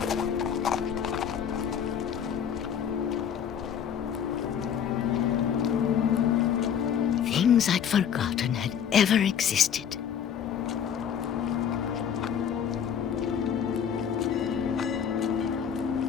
Things I'd forgotten had ever existed.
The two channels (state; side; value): quieter; right; 8.2 dB